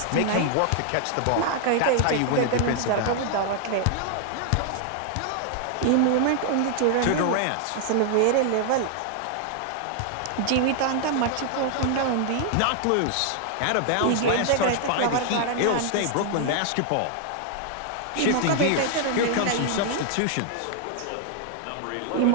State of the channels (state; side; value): different; both; correlation 0.00